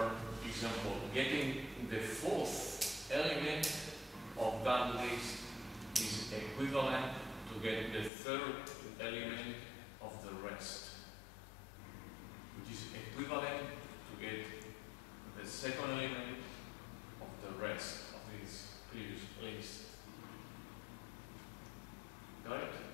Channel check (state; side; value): drops out; right; at 8.1 s